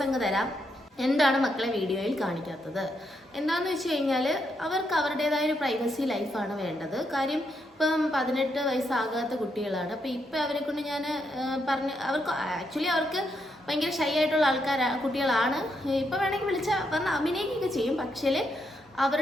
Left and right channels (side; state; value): both; normal; correlation 0.79